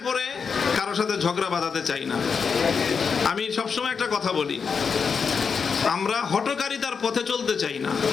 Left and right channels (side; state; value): right; quieter; 5.8 dB